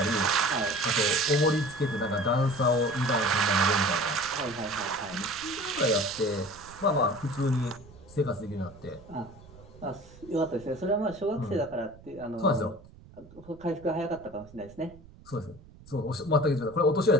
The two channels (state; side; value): noise; right; rumble, 21 dB below the sound